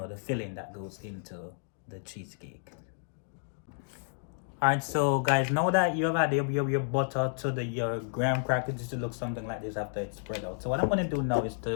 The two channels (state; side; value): silent; right; digital silence